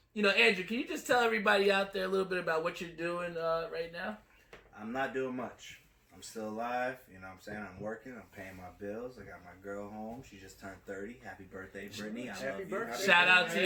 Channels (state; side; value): identical; both; correlation 1.00